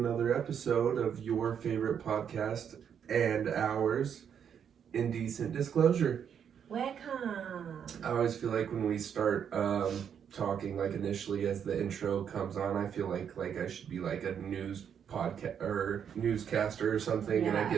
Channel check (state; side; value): quieter; left; 8.1 dB